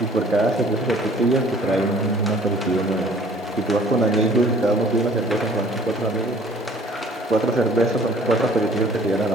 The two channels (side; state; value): both; normal; correlation 0.53